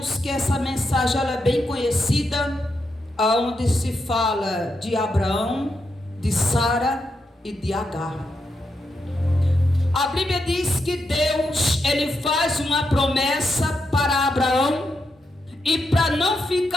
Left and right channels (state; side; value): normal; both; correlation 0.84